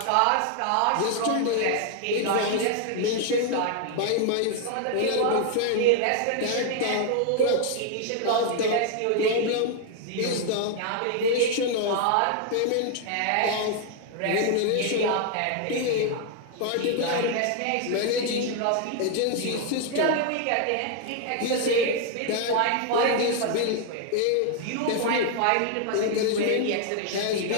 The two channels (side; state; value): both; different; correlation 0.00